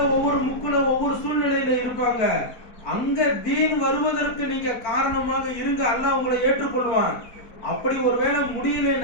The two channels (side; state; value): right; late; 4.5 ms